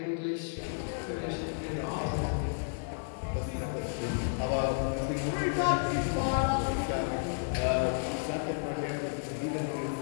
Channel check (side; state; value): right; silent; digital silence